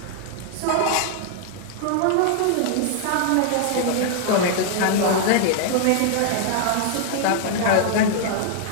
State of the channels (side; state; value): both; different; correlation 0.00